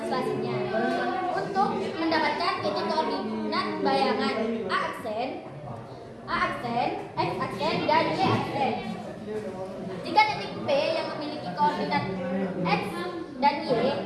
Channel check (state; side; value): identical; both; correlation 1.00